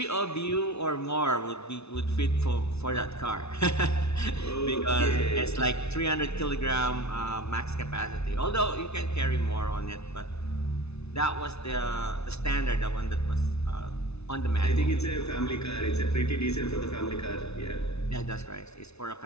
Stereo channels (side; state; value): right; late; 0.80 ms